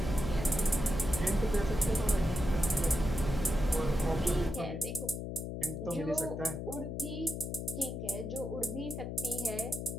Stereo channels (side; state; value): left; noise; hum, 5 dB below the sound